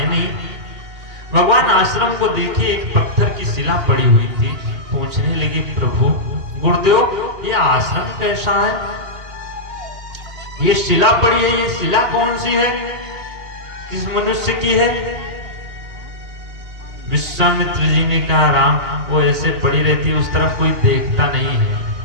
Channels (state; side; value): late; left; 2.8 ms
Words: नहीं। भगवान आश्रम को देखे, एक पत्थर की शिला पड़ी हुई थी। पूछने लगे, प्रभु गुरुदेव ये आश्रम कैसा है? ये शिला पड़ी है, ये शिला कौन सी है? किस मनुष्य की है? विश्वामित्र जी ने कहा, राम वो ऐसे पड़ी रहती है, उस तरफ कोई देखता नहीं है,